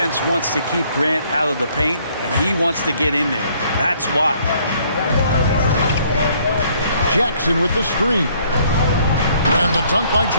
wants to keep Grant out of the paint, and he wants to get in there. That's why. Jackson with the screen. And the dunk by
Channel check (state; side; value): inverted; both; correlation -0.64